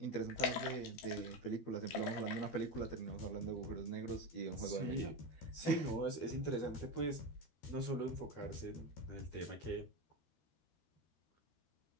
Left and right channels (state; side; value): late; right; 13 ms